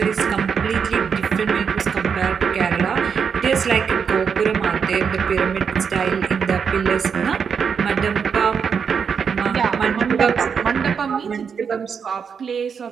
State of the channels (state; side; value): quieter; left; 6.6 dB